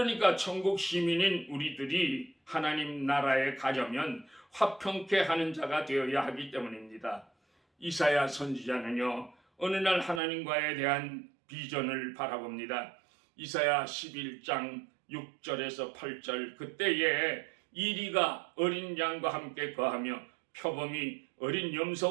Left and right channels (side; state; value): left; drops out; at 10.2 s